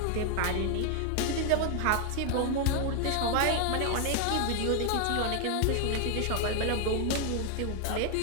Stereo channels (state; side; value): different; both; correlation 0.00